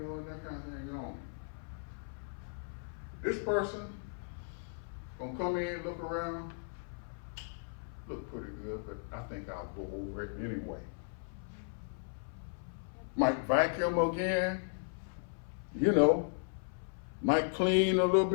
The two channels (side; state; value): right; silent; 54 dB below the other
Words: know, and that kind of thing on. This person gonna come in, look around, look pretty good, but I think I'll go over it anyway. Might vacuum again, you know, might clean a little